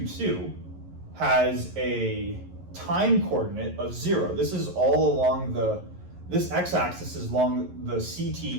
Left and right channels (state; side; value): late; left; 11 ms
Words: has a time coordinate of 0. This is all along this x-axis is along the CT